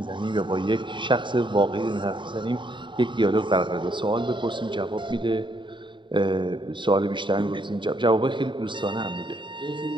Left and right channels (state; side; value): late; left; 0.23 ms